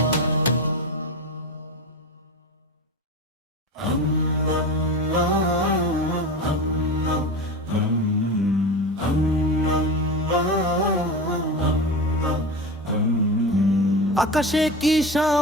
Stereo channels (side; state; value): both; normal; correlation 0.26